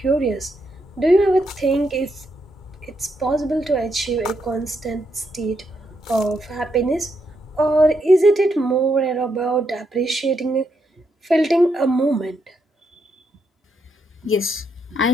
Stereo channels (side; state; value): both; normal; correlation 0.79